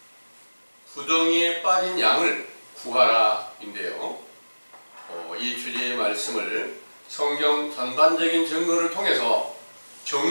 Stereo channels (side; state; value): both; inverted; correlation -1.00